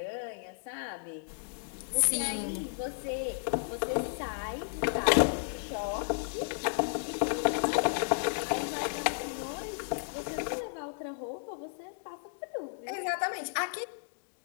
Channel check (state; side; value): silent; right; digital silence